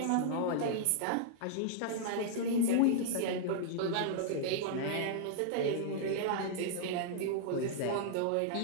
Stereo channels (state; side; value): different; both; correlation -0.01